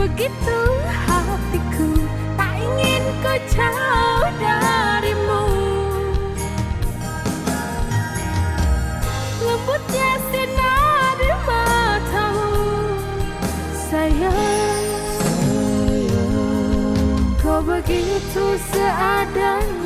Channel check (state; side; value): identical; both; correlation 1.00